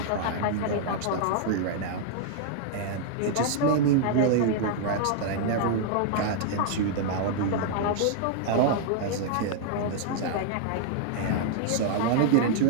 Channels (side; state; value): both; different; correlation -0.01